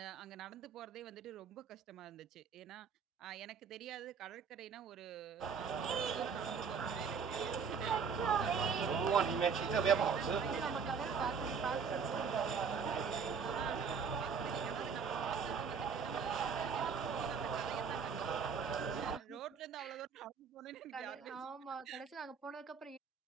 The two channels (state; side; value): quieter; left; 6.1 dB